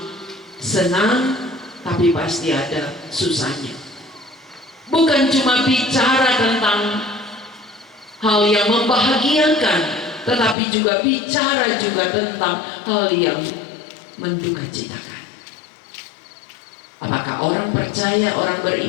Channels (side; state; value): right; drops out; at 10.6 s